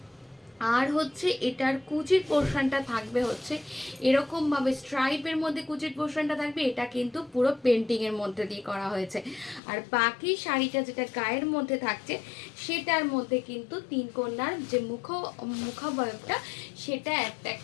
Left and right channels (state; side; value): drops out; right; at 9.6 s